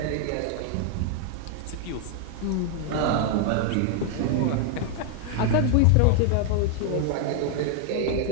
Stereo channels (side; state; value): both; different; correlation 0.00